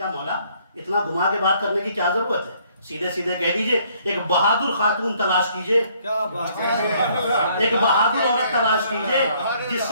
مولا اتنا گھما کے بات کرنے کی کیا ضرورت ہے؟ سیدھے سیدھے کہہ دیجئے ایک بہادر خاتون تلاش کیجئے، کیا بات ہے، ایک بہادر عورت تلاش کیجئے جس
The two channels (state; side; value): inverted; both; correlation -0.65